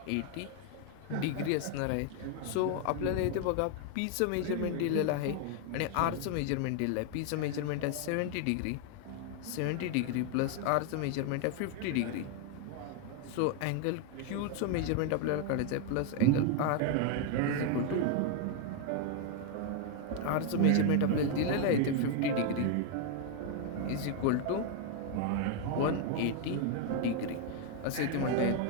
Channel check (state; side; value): different; both; correlation 0.00